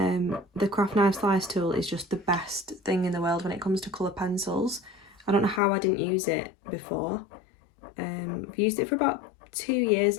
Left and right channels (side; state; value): right; drops out; at 5.6 s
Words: craft knife slice tool is just the best thing in the world when it comes to colour pencils. I don't know how I didn't use it before. I've used it for about 2